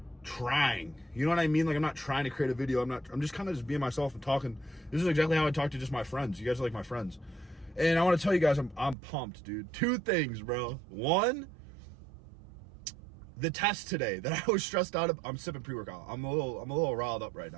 trying, you know what I mean? Like I'm not trying to create a video. I'm just kind of just being myself and talking. This is exactly how I talk to just my friends. You guys are like my friends. And I want to tell you guys, I'm pumped, dude. Two things, bro. One, the test today that I was stressed out of, I'm sipping pre-workout. I'm a little riled up right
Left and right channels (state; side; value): drops out; left; at 9.0 s